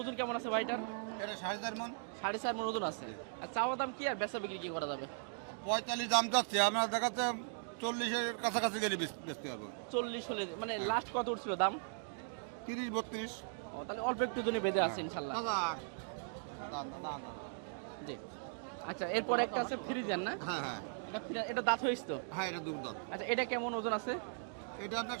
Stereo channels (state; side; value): silent; left; digital silence